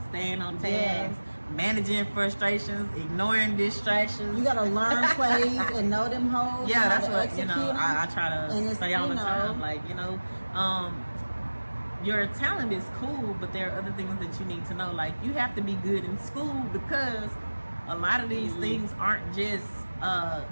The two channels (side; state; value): both; inverted; correlation -1.00